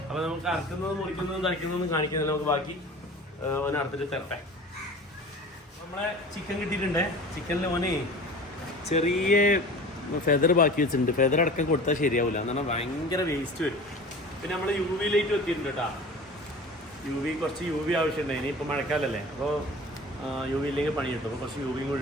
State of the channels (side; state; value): both; normal; correlation 0.39